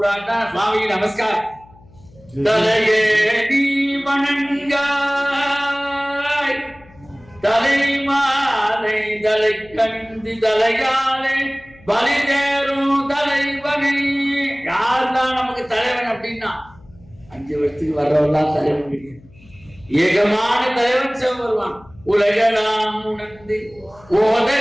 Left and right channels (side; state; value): left; noise; hum, 26 dB below the sound